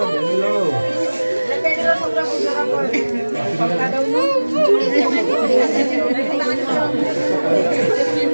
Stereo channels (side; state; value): both; inverted; correlation -1.00